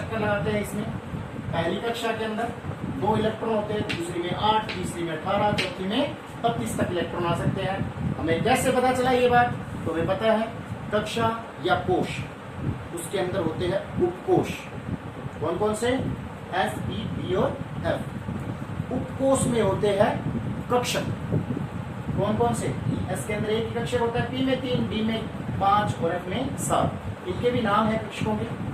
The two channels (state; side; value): identical; both; correlation 1.00